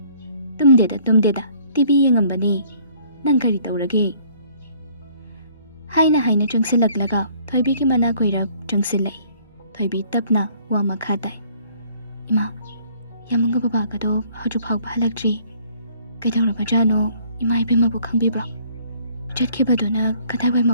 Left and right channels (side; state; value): both; inverted; correlation -0.59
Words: ꯇꯨꯝꯗꯦꯗ, ꯇꯤꯚꯤ ꯌꯦꯡꯉꯝꯕꯅꯤ꯫ ꯅꯪ ꯀꯔꯤ ꯇꯧꯔꯒꯦ?" ꯍꯥꯏꯅ ꯆꯪꯁꯤꯜꯂꯛꯂꯒ ꯊꯣꯏꯕꯤꯒꯤ ꯃꯅꯥꯛ ꯑꯣꯏꯔꯞ ꯆꯪꯁꯤꯜꯂꯛꯏ꯫ ꯊꯣꯏꯕꯤ ꯇꯞꯅ ꯋꯥ ꯃꯈꯥ ꯇꯥꯏ, "ꯏꯃꯥ, ꯌꯥꯃꯨꯡꯒ ꯕꯕꯥꯒꯗꯣ ꯍꯧꯖꯤꯛ ꯐꯥꯎꯕ ꯍꯜꯂꯛꯇ꯭ꯔꯤ꯫ ꯀꯩꯗꯧꯔꯕꯖꯥꯠꯅꯣ ꯏꯃꯥ ꯏꯕꯦꯝꯃꯕꯨ ꯈꯪꯕꯤꯕ꯭ꯔꯣ? ꯆꯠꯈꯤꯕꯗꯨꯅ ꯀꯗꯥꯏꯋꯥꯏ